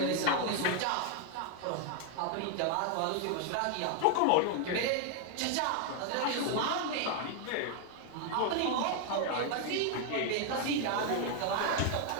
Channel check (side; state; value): both; different; correlation 0.00